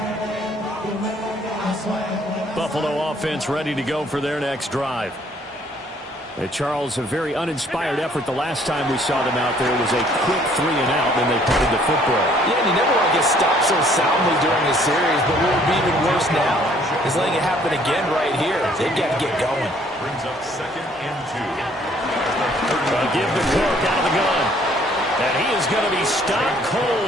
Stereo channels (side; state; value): both; normal; correlation 0.61